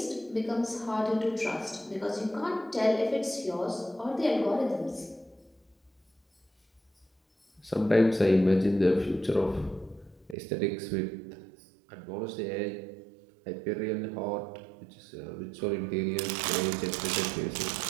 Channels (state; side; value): drops out; left; at 10.4 s